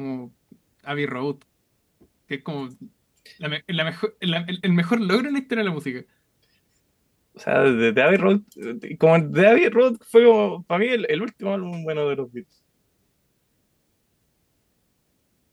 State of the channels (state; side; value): identical; both; correlation 1.00